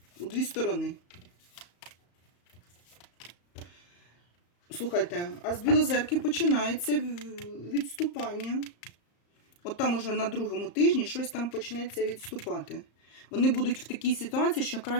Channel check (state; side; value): late; right; 34 ms